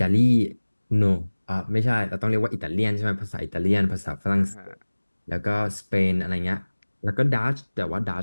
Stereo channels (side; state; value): both; inverted; correlation -1.00